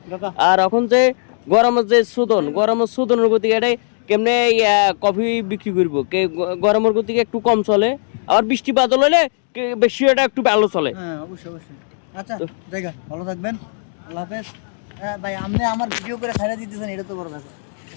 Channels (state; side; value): silent; right; digital silence